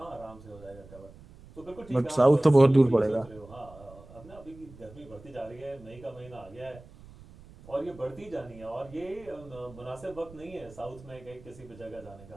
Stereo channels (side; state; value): right; noise; rumble, 20 dB below the sound